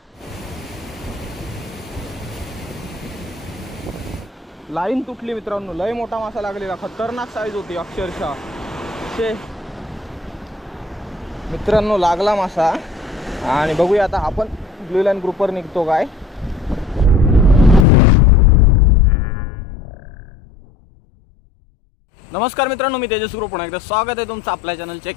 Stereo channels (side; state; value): right; drops out; at 17.9 s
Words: लाईन तुटली मित्रांनो, लय मोठा मासा लागलेला, खतरनाक साईज होती अक्षरशः। मित्रांनो लागला मासा आणि बघूया आता आपण ब्लू लाईन ग्रुपवर निघतो काय। नमस्कार मित्रांनो, मी तेजस ग्रुप, पुन्हा एकदा स्वागत आहे तुमचं आपल्या चॅनलच्या